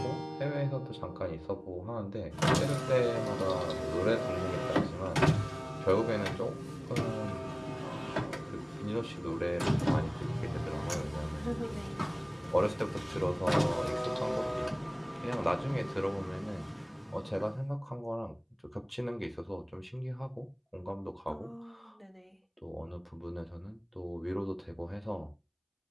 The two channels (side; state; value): both; identical; correlation 1.00